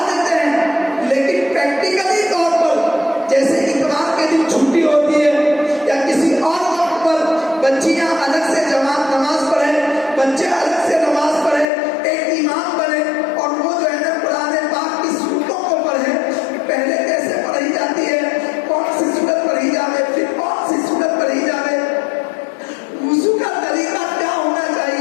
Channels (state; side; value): drops out; right; at 11.7 s